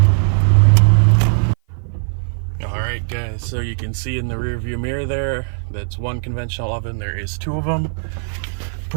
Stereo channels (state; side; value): silent; left; 55 dB below the other